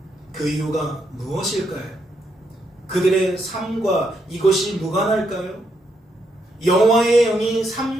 그 이유가 무엇일까요? 그들의 삶과 이것이 무관할까요? 여호와의 영이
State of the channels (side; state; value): both; normal; correlation 0.78